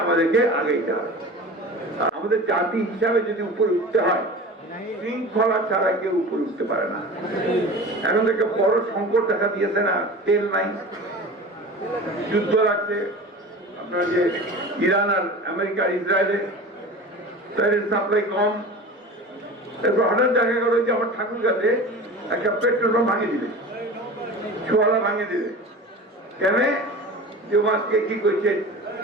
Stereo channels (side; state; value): both; normal; correlation 0.35